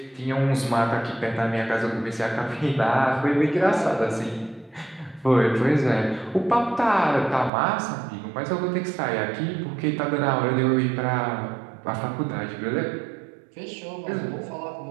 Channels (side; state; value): left; drops out; at 7.5 s